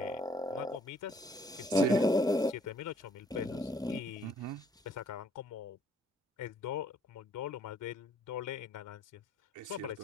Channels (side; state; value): both; normal; correlation 0.63